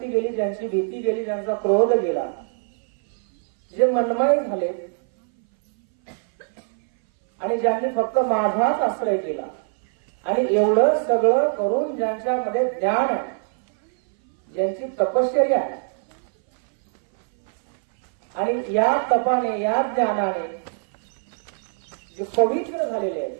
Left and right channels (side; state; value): left; silent; 61 dB below the other